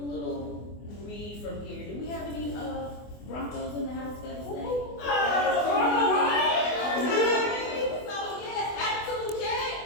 read from here. Do we have any Broncos in the house that say? So yes, attitude check.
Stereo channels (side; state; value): right; late; 24 ms